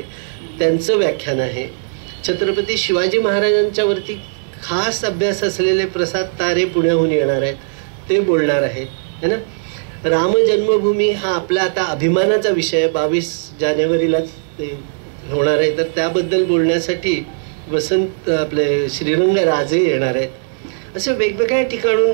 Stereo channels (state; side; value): silent; left; 68 dB below the other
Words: त्यांचं व्याख्यान आहे. छत्रपती शिवाजी महाराजांच्यावरती खास अभ्यास असलेले प्रसाद तारे पुण्याहून येणार आहेत, ते बोलणार आहेत, है ना. राम जन्मभूमी हा आपला आता अभिमानाचा विषय 22 जानेवारीला होणार आहे, तर त्याबद्दल बोलण्यासाठी वसंत आपले श्रीरंग राजे येणार आहेत. असे वेगवेगळ्या ठिकाणून